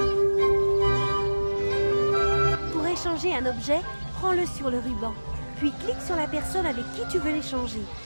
Pour échanger un objet, prends-le sur le ruban. Puis clique sur la personne avec qui tu veux l'échanger.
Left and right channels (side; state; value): both; inverted; correlation -1.00